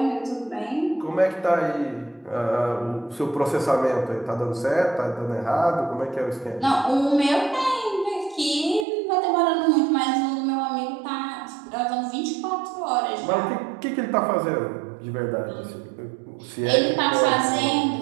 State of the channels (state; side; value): drops out; left; at 8.8 s